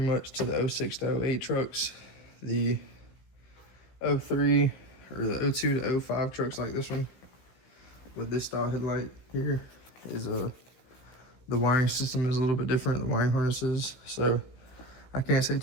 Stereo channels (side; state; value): right; late; 16 ms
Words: much to the 06 to 08 trucks. The 03 or the 02 to 05 trucks like this one with this style headlight here is the wiring system is a little bit different, the wiring harnesses. So I can't say